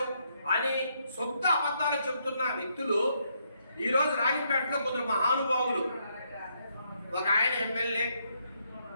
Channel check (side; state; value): both; inverted; correlation -0.75